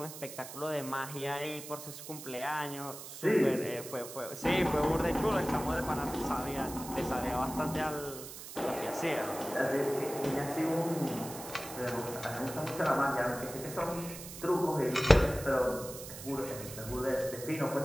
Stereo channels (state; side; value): noise; right; hiss, 12 dB below the sound